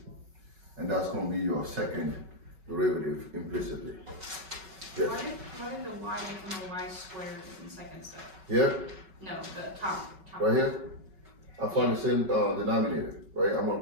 And that's going to be your second derivative implicitly. Yes. Why did the y become a y squared in second step? Here, No, the top. right here, I find the same denominator, right? I'm going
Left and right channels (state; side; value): late; left; 5.3 ms